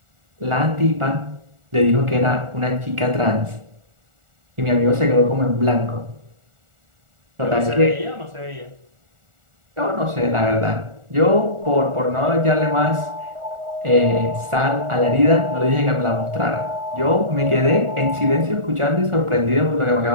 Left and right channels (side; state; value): left; late; 1.4 ms